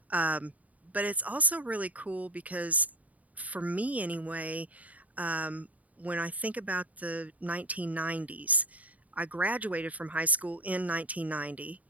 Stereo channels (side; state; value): left; late; 0.072 ms